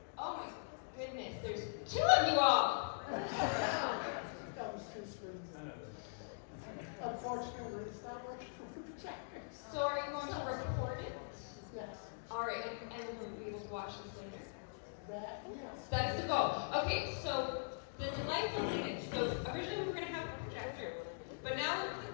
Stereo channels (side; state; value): right; silent; digital silence